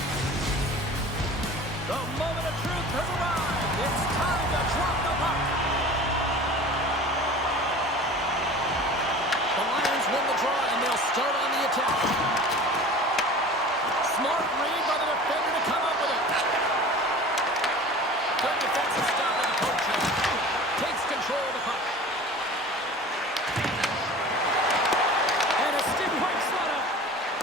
The moment of truth has arrived. It's time to drop the puck. The Lions win the draw, and they'll start on the attack. Smart read by the defender to come up with it. Good defensive stop at the poke check. Takes control of the puck. And a stick break setup.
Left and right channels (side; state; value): both; normal; correlation 0.40